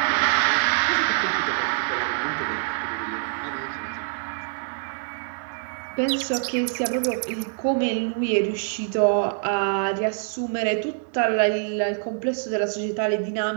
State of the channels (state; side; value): silent; left; digital silence